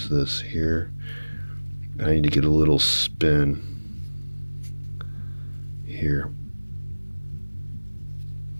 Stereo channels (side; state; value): both; inverted; correlation -1.00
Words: this here. I need to get a little spin here.